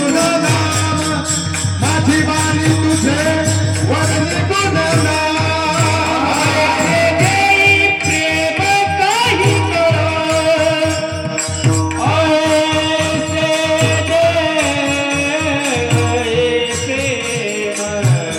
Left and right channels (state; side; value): identical; both; correlation 1.00